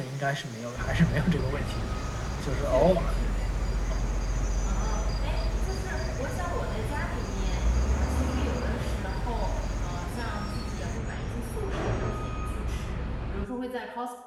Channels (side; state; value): both; identical; correlation 1.00